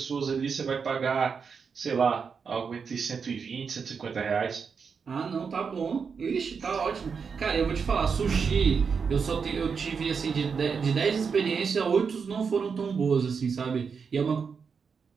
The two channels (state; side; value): quieter; left; 5.9 dB